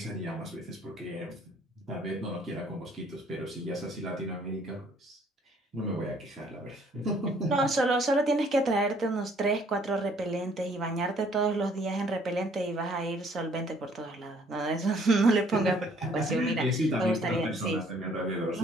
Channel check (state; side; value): normal; both; correlation 0.61